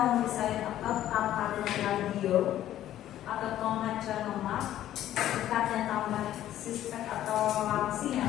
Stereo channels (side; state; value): right; quieter; 12.5 dB